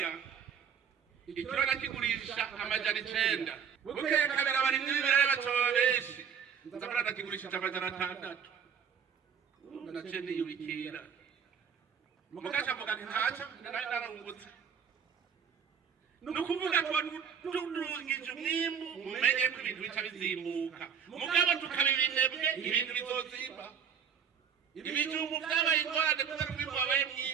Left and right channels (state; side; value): quieter; left; 7.5 dB